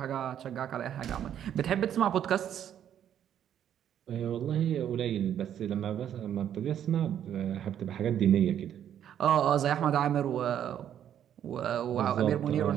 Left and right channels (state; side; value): quieter; left; 10.0 dB